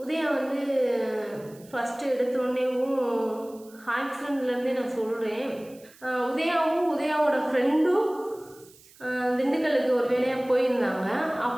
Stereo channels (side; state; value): right; noise; hiss, 25 dB below the sound